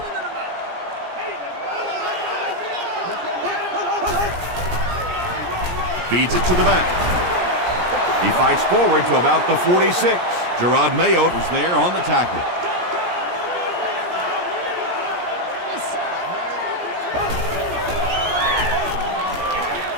Feeds it to the back. He fights forward to about the 46. Gerard Mayo was there on the tackle.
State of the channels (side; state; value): left; late; 17 ms